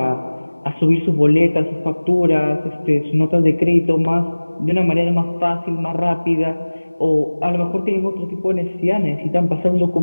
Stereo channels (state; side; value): inverted; both; correlation -1.00